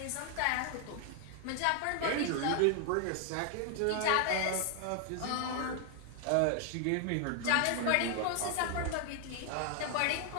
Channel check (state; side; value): different; both; correlation 0.00